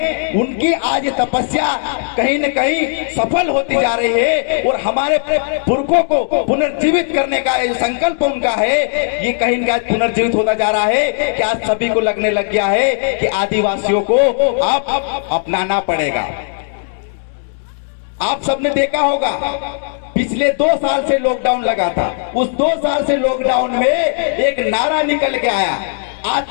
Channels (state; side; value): silent; right; digital silence